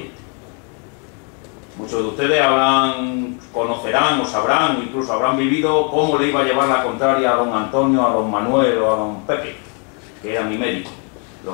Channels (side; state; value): right; quieter; 37.9 dB